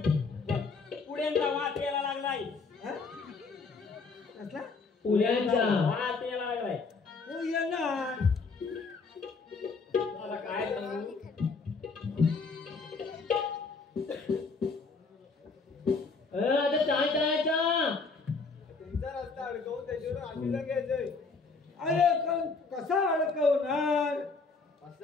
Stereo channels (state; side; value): quieter; right; 4.4 dB